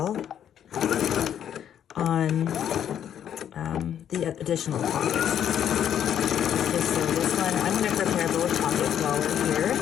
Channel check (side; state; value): right; quieter; 9.6 dB